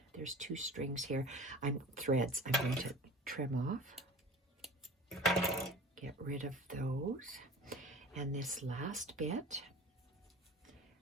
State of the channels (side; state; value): both; normal; correlation 0.39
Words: There's 2 strings here. Threads. I'm going to trim off. Get rid of those. And this last bit